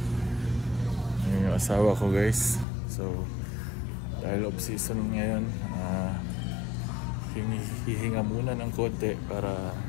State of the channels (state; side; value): drops out; right; at 2.7 s